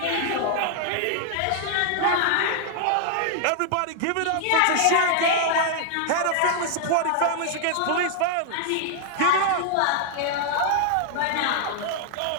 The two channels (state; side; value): different; both; correlation 0.00